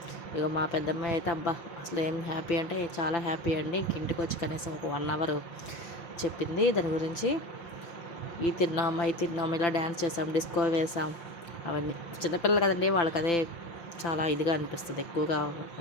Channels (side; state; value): right; late; 5.9 ms